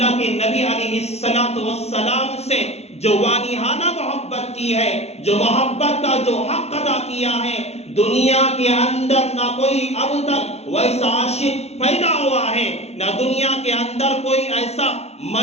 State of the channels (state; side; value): late; right; 0.31 ms